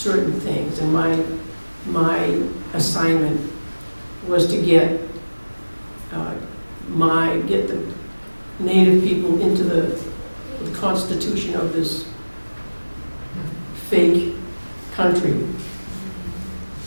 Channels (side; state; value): both; inverted; correlation -1.00